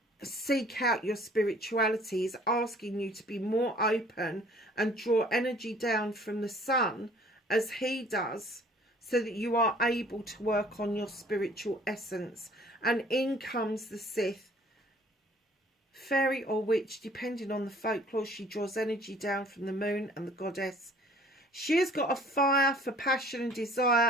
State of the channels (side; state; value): both; normal; correlation 0.54